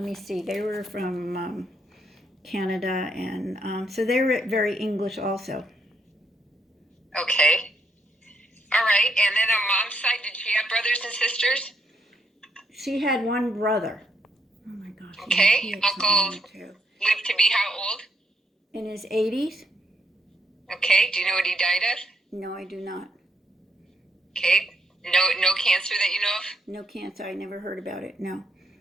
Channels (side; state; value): both; normal; correlation 0.76